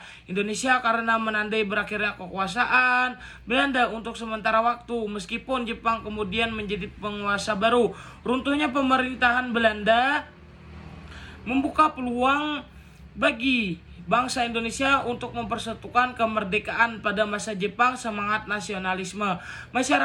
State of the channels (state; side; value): identical; both; correlation 1.00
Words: Indonesia karena menandai berakhirnya kekuasaan Belanda untuk sementara waktu, meskipun Jepang kemudian menjadi penguasa baru. Runtuhnya pemerintahan Belanda membuka peluang bagi bangsa Indonesia untuk mempersatukan kemerdekaan. Pada masa Jepang, semangat nasionalisme